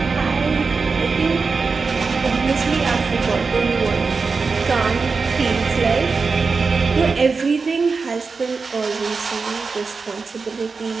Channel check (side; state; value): left; quieter; 4.6 dB